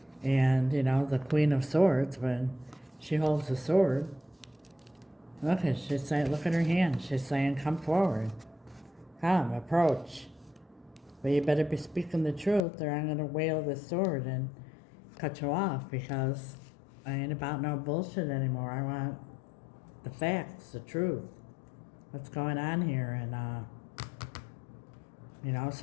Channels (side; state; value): right; drops out; at 12.7 s